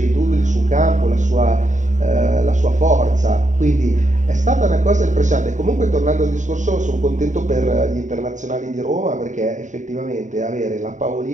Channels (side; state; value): left; late; 0.36 ms